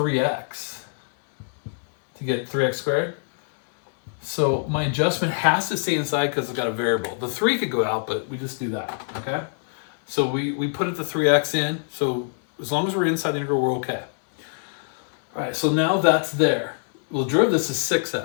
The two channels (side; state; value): right; silent; 63 dB below the other